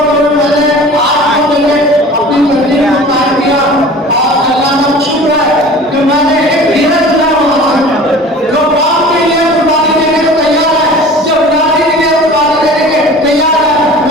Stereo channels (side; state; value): both; normal; correlation 0.42